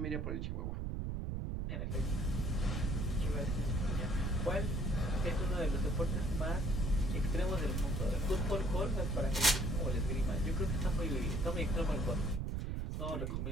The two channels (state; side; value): noise; right; rumble, 1 dB below the sound